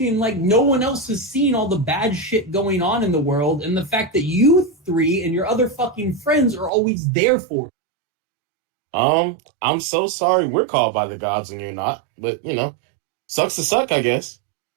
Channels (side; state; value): left; drops out; at 6.7 s